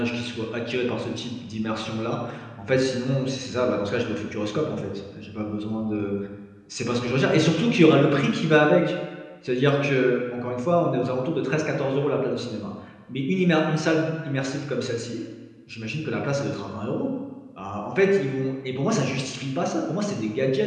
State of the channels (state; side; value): identical; both; correlation 1.00